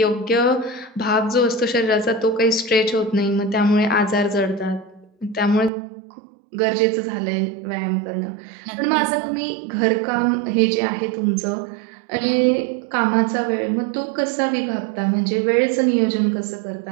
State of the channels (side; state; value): left; drops out; at 5.7 s